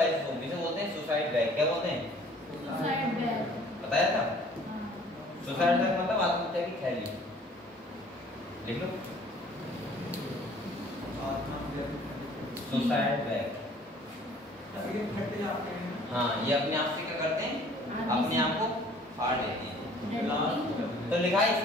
इसे बोलते हैं सुसाइड बैग। क्या बोलते हैं? Suicide bag. बताया था। सुसाइड बैग मतलब आत्महत्या की थैली। लिख लो, सुसाइड बैग। हाँ, ये अपने आप से क्या करते हैं? अपने आप को फाड़ लेते हैं। तो लिखा है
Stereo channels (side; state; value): both; normal; correlation 0.54